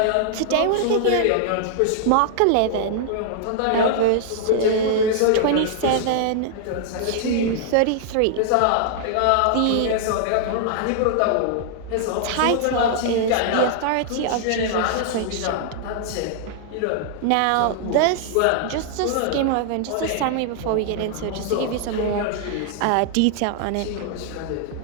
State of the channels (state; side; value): different; both; correlation -0.01